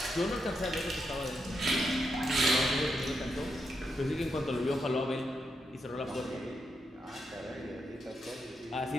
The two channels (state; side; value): normal; both; correlation 0.82